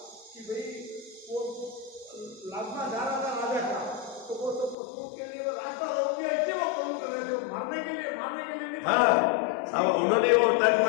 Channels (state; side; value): drops out; right; at 4.8 s